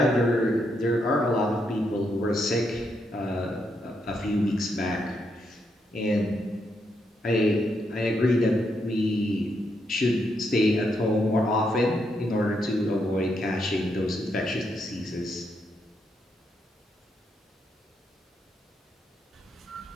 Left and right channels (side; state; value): both; normal; correlation 0.79